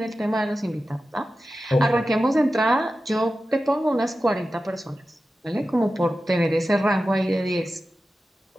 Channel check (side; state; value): both; normal; correlation 0.93